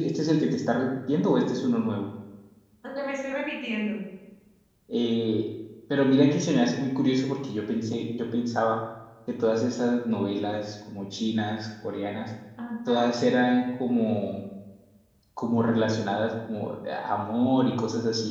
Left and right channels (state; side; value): identical; both; correlation 1.00